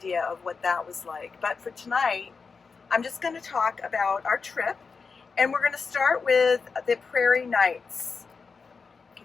of what that was like. But for tonight, I'm just going to talk about our trip, and we're going to start with the Prairie Nights. Can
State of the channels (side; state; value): right; quieter; 5.0 dB